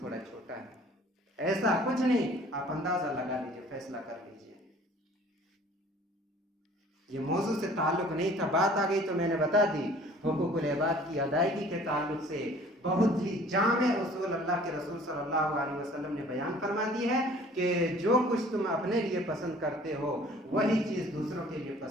छोटा है, ऐसा कुछ नहीं। आप अंदाजा लगा लीजिए, फैसला कर लीजिए। ये मौजू से ताल्लुक नहीं था, बात आ गई तो मैंने बता दी। हुकूकुल इबाद की अदायगी के ताल्लुक से बहुत ही जामे उसूल अल्लाह के रसूल सल्लल्लाहु अलैहि वसल्लम ने बयान फरमा दी है कि जो कुछ तुम अपने लिए पसंद करते हो वही चीज़ दूसरों के लिए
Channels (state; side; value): normal; both; correlation 0.51